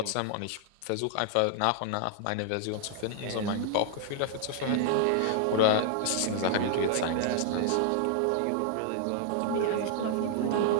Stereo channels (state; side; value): different; both; correlation -0.01